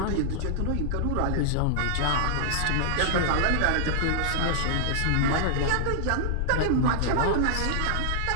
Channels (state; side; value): different; both; correlation -0.01